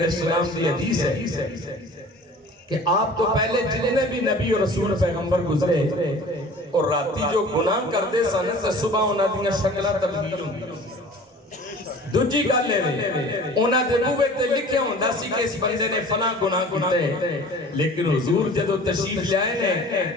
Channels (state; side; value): normal; both; correlation 0.44